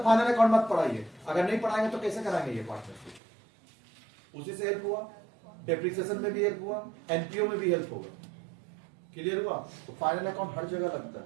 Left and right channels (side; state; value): left; drops out; at 3.2 s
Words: फाइनल अकाउंट मत पढ़ाइए। अगर नहीं पढ़ाएंगे तो कैसे कराएंगे ये पार्टनरशिप? उसी से हेल्प हुआ, डेप्रिसिएशन में भी हेल्प हुआ, एनपीओ में भी हेल्प होगा। क्लियर हुआ? तो फाइनल अकाउंट हर जगह लगता